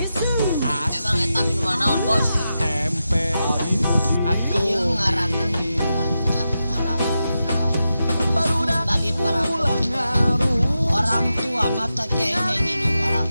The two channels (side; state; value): both; inverted; correlation -0.89